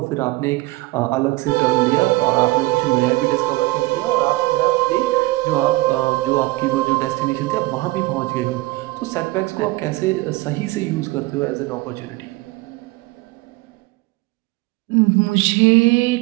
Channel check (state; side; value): quieter; left; 21.0 dB